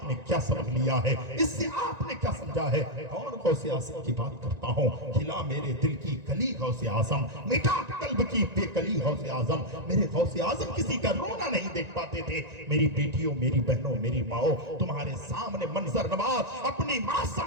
क्या समझ लिया है? इससे आपने क्या समझा है? और गौसे आजम की बात करता हूँ, खिला मेरे दिल की कली गौसे आजम, मिटा कल्ब की बेकली गौसे आजम। मेरे गौसे आजम किसी का रोना नहीं देख पाते थे। मेरी बेटियों, मेरी बहनों, मेरी माओ, तुम्हारे सामने मंजर नवाज अपनी माँ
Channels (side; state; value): left; late; 1.9 ms